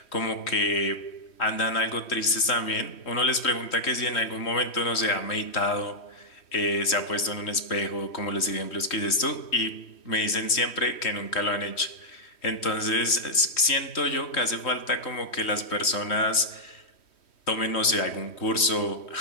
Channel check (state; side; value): late; right; 3.1 ms